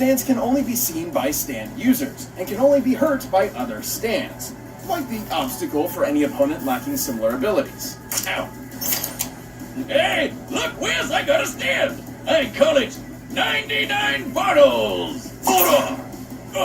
can only be seen by stand users, and can only be hurt by other stands. Quite the obstacle for any opponent lacking similar abilities. Ow. Hey, look, Wiz, I got a stand. I call it 99 bottles. Hold on.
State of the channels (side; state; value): both; identical; correlation 1.00